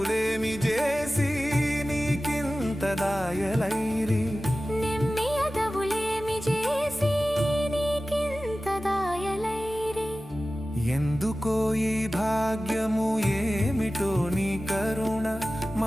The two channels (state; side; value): normal; both; correlation 0.96